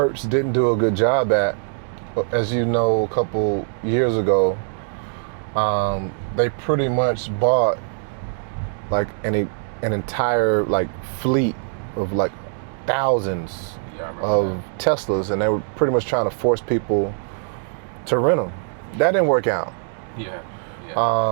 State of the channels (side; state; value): left; silent; digital silence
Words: didn't do a good job at. As you know, a couple years ago, they pretty much bought like an entire like fleet of like thousands Yeah, I remember of Teslas, and they were pretty much trying to force people to rent them. That didn't work out. that.